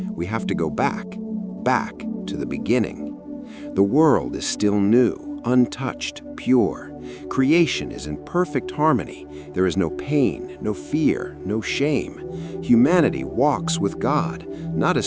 we have to go back to the beginning. The world is still new, untouched, pure. Creation is in perfect harmony. There is no pain, no fear, no shame. Humanity walks with God, not as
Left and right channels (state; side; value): identical; both; correlation 1.00